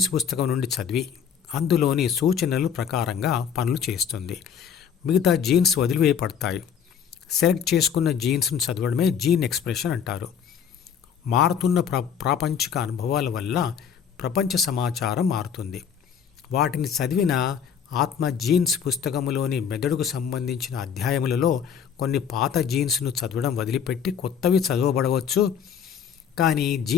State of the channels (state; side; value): quieter; right; 7.7 dB